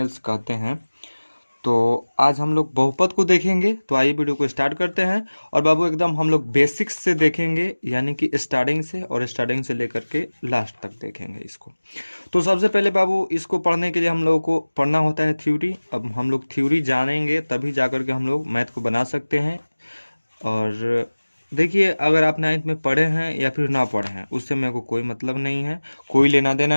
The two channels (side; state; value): both; inverted; correlation -1.00